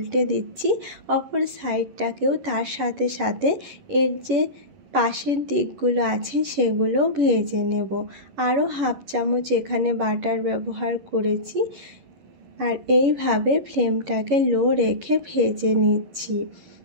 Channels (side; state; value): left; late; 11 ms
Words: দিচ্ছি, অপর সাইডটাকেও তার সাথে সাথে এর যে পাশের দিকগুলো আছে সেগুলো ভেজে নেব। আরও 1/2 চামচ এখানে বাটার ব্যবহার করেছি আর এইভাবে ফ্লেমটাকে লো রেখে ভেজে নিচ্ছি।